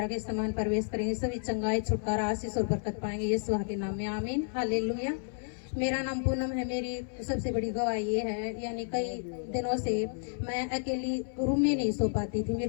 के समान प्रवेश करेंगे, सभी चंगाई छुटकारा आशीष और बरकत पाएंगे यीशु के नाम में, आमीन। हालेलुया। मेरा नाम पूनम है। मेरी सबसे बड़ी गवाही ये है, यानी कई दिनों से मैं अकेली रूम में नहीं सो पाती थी,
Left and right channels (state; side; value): silent; right; 57 dB below the other